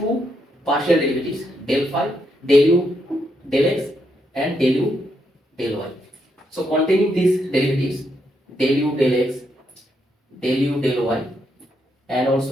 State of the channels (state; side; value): normal; both; correlation 0.79